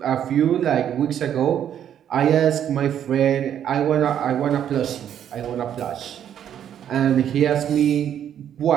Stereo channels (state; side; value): quieter; left; 9.8 dB